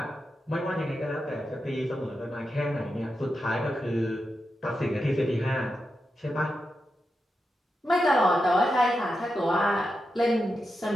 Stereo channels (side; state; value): both; normal; correlation 0.88